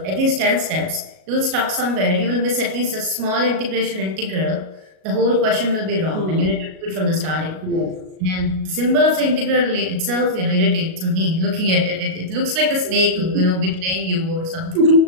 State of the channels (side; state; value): left; late; 37 ms